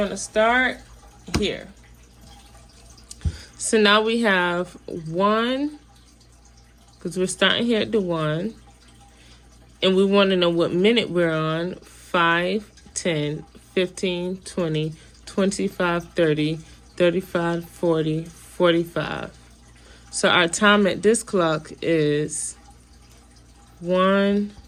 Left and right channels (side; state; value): both; identical; correlation 1.00